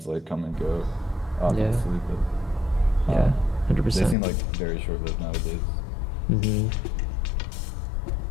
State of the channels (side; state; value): right; drops out; at 4.2 s